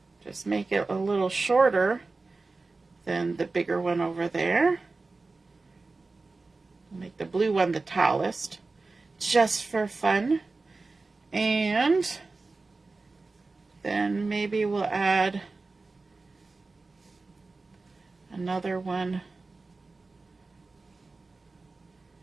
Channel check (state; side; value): quieter; left; 3.7 dB